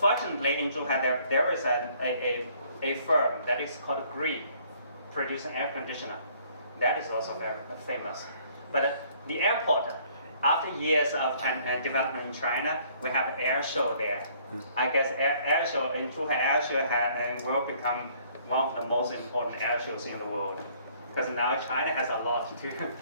in Zhuhai there is a firm that is called Gree, producing air conditioner. That is also very famous. But the airport, after years of development in China, we have air show there. I guess air show in Zhuhai air show will become one of the most important air shows in the world, because now China has a lot to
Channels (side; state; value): both; inverted; correlation -0.61